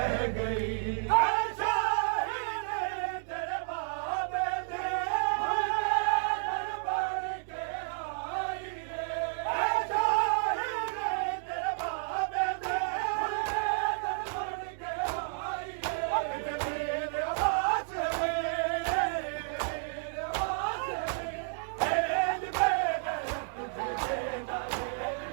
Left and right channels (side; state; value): left; silent; 57 dB below the other